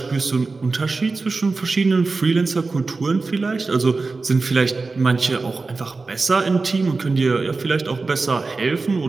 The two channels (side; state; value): left; quieter; 3.9 dB